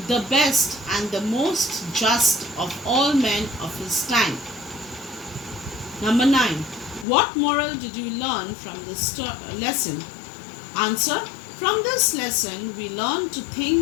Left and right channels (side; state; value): right; drops out; at 7.1 s